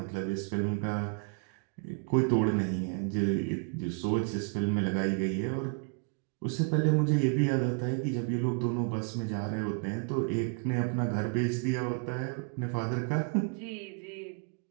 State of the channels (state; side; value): quieter; left; 37.2 dB